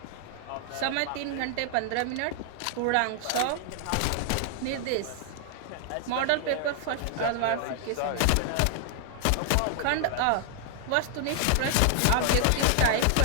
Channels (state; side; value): different; both; correlation 0.00